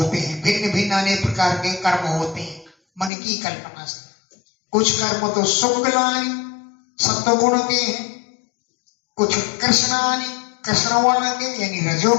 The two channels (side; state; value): right; drops out; at 3.1 s